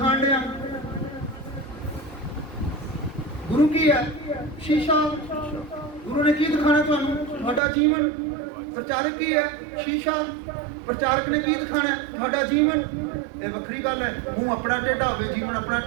ਲਿਆ। ਗੁਰੂ ਕੀ ਹੈ? ਸ਼ੀਸ਼ਾ। ਗੁਰੂ ਨੇ ਕੀ ਦਿਖਾਣਾ ਤੁਹਾਨੂੰ? ਤੁਹਾਡਾ ਜੀਵਨ। ਪ੍ਰਚਾਰਕ ਕੀ ਹੈ? ਸ਼ੀਸ਼ਾ। ਪ੍ਰਚਾਰਕ ਨੇ ਕੀ ਦਿਖਾਣਾ? ਤੁਹਾਡਾ ਜੀਵਨ। ਇਹ ਵੱਖਰੀ ਗੱਲ ਹੈ, ਮੂੰਹ ਆਪਣਾ ਟੇਢਾ ਹੋਵੇ, ਜੀਵਨ ਆਪਣਾ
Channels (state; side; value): drops out; left; at 7.6 s